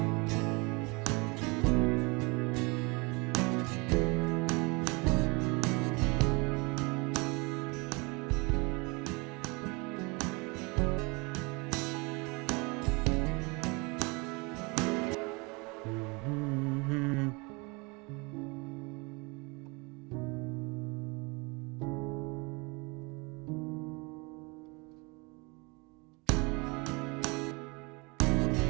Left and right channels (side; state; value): left; quieter; 28.3 dB